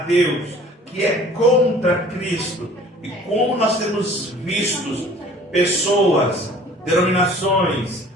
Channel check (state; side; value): normal; both; correlation 0.49